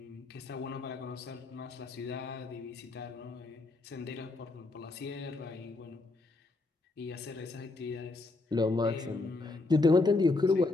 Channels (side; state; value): right; quieter; 3.3 dB